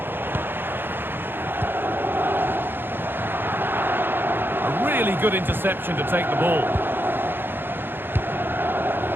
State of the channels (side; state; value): left; late; 0.10 ms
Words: A really good interception to take the ball.